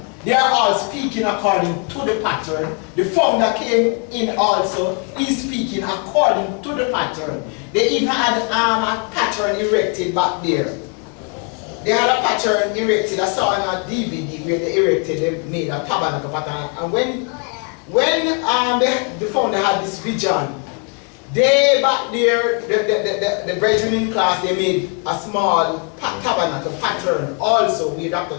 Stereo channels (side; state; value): right; quieter; 36.3 dB